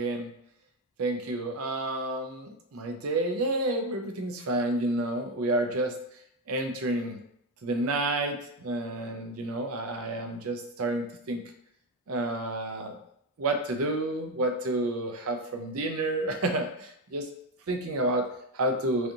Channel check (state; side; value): normal; both; correlation 0.12